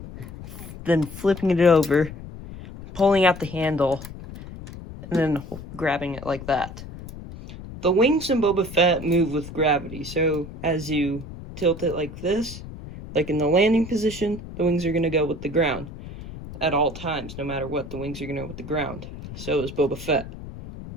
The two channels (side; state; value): left; noise; rumble, 13 dB below the sound